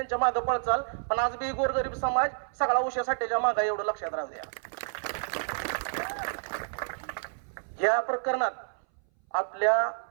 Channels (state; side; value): silent; left; 58 dB below the other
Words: मागे पळचाल, पण आज बी गोरगरीब समाज सगळा उषा साठेच्या मागे, एवढं लक्षात राहू द्या. या प्रकरणात आपल्या